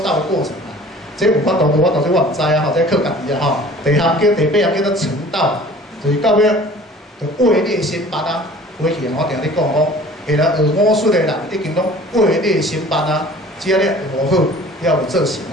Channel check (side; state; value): both; normal; correlation 0.47